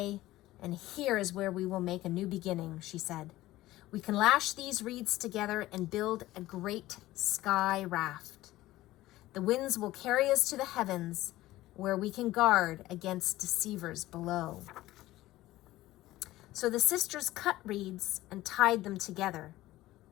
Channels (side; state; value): right; quieter; 16.6 dB